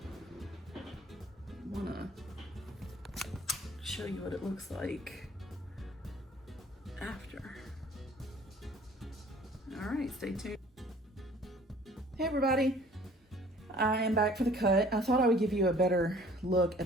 I want to show you what it looks like after. All right, stay tuned. Hey everybody. I am back for the cut. I thought I would give you a better look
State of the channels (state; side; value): normal; both; correlation 0.53